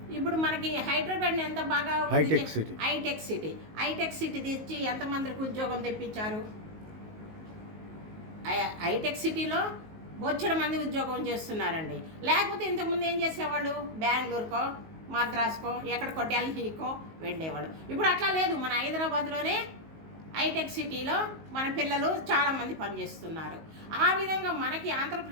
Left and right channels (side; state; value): left; late; 19 ms